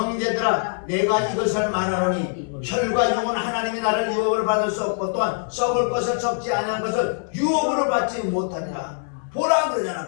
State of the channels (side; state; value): right; silent; 63 dB below the other